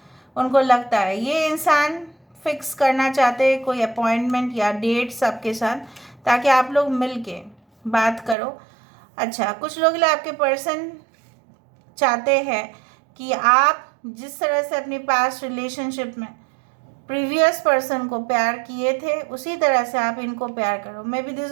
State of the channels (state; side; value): drops out; left; at 8.3 s